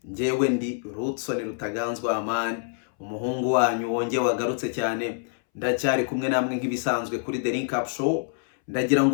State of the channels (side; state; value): right; silent; 61 dB below the other